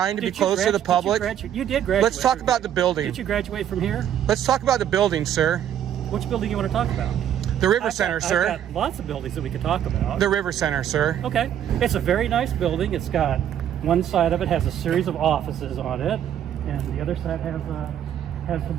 to be closed to the public? You did graduate. Let's talk about the building. Did you graduate from here? Let's talk about the building, sir. Which building you want to talk about? The River Center, sir. I've got lots of buildings that we could talk about. The River Center, sir. Okay. It's a very nice building. It's got one side of it has a series of offices on it, and the other side has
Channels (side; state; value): left; quieter; 10.2 dB